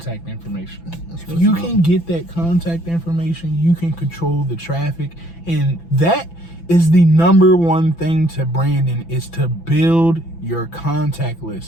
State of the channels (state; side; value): late; right; 5.9 ms